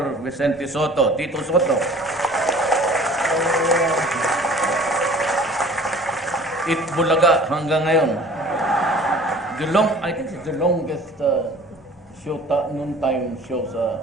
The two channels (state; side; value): normal; both; correlation 0.48